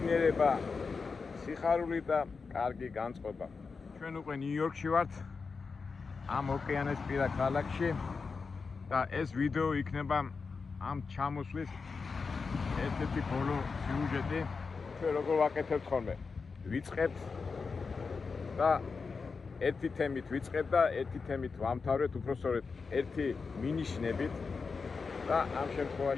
სიხარული და კარგი განწყობა. ჩვენ უკვე ნიუ-იორკში ვართ, ამ ოკეანესპირა ქალაქში და ეს ვიდეო იქნება ამ ჩამოსვლის ერთ-ერთი ბოლო სიუჟეტი. ჩვენ როგორ ვაკეთებთ ხოლმე? ვიწყებთ და ერთი თემით ვიწყებ და ერთი თემით ვამთავრეთ, უпростоრეთ ერთი მინიშნებით. და ამ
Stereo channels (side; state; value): right; quieter; 4.8 dB